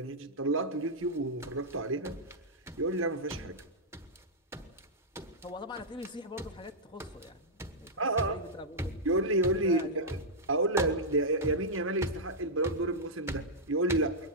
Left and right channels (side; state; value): both; normal; correlation -0.08